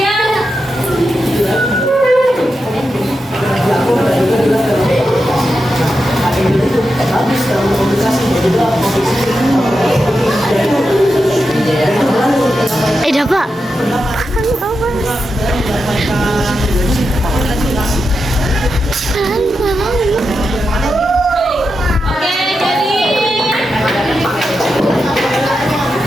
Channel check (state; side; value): normal; both; correlation 0.88